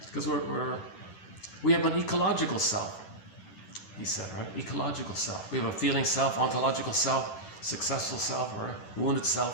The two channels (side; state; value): right; late; 10 ms